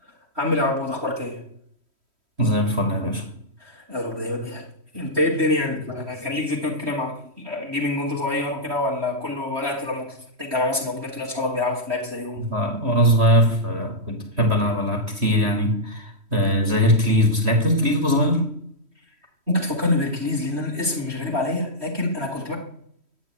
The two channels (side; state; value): left; late; 3.1 ms